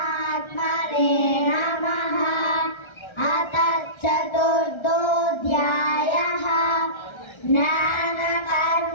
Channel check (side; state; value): right; late; 1.3 ms